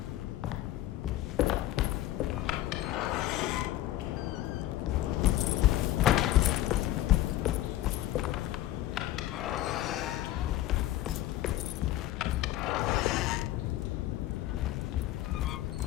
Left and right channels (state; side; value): quieter; right; 14.7 dB